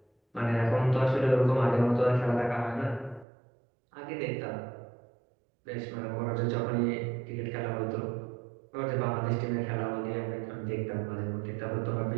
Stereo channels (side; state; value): left; drops out; at 3.2 s